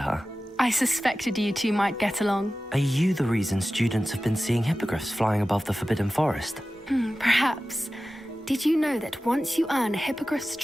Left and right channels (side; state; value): both; normal; correlation 0.95